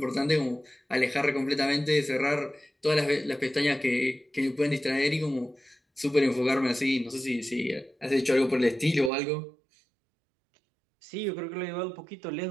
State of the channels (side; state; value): left; drops out; at 9.1 s